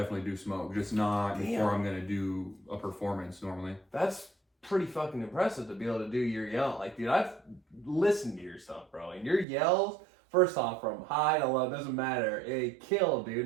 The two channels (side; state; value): left; drops out; at 9.5 s